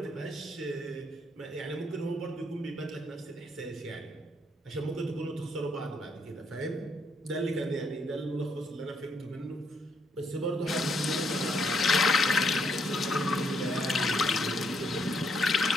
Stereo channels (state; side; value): normal; both; correlation 0.73